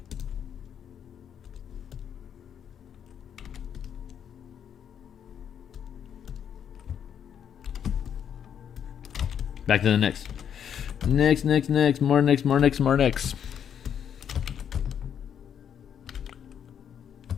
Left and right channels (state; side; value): quieter; right; 8.6 dB